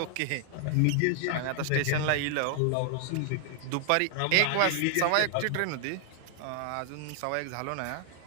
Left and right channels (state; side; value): different; both; correlation 0.00